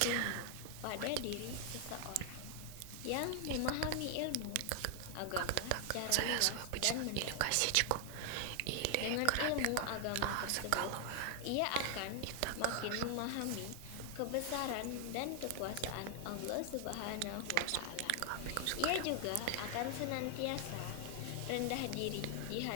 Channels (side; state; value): both; different; correlation 0.00